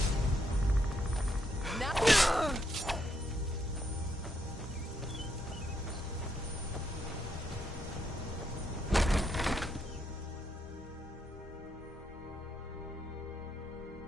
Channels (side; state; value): both; normal; correlation 0.77